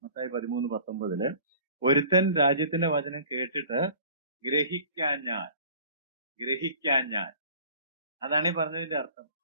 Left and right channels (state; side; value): inverted; both; correlation -0.47